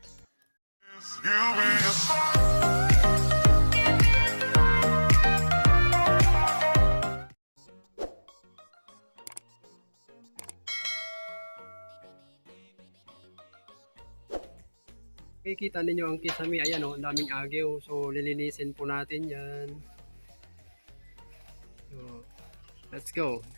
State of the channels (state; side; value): inverted; both; correlation -1.00